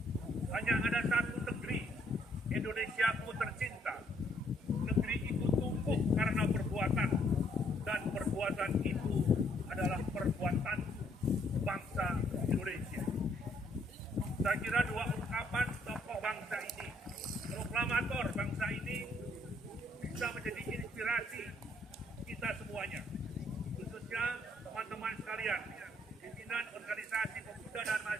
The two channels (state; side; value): normal; both; correlation 0.68